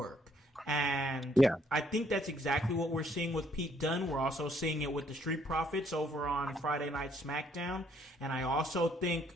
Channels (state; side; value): normal; both; correlation 0.67